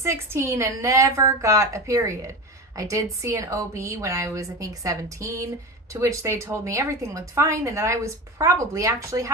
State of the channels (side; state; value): both; normal; correlation 0.25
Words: and never got a period. I did see an OB when I was, I think, 17, to which they told me everything looked fine and that I was probably actually